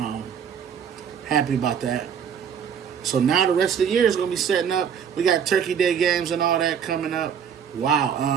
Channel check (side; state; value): left; quieter; 7.8 dB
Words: Happy about that. So now the rest of the year is going to be setting up. We got Turkey Day games and all that coming up.